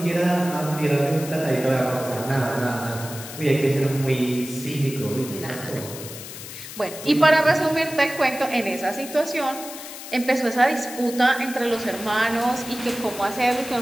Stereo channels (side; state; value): left; noise; hiss, 12 dB below the sound